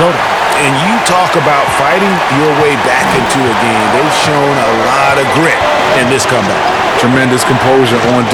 And you talk about fighting your way back into a game. They've shown a lot of grit in this comeback. Tremendous composure on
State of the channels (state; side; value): identical; both; correlation 1.00